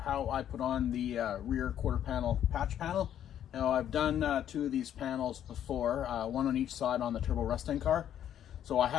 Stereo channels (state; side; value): quieter; right; 10.3 dB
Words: I put on the rear quarter panel patch panel. Now I've done two of these panels before, one on each side on the turbo Mustang car. So I